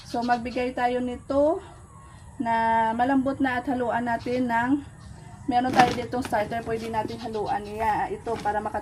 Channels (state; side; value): identical; both; correlation 1.00